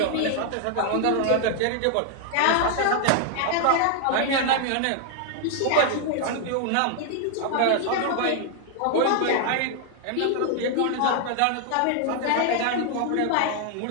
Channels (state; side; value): different; both; correlation 0.00